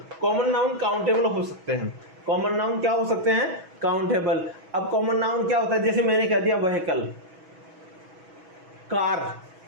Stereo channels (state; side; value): late; left; 6.2 ms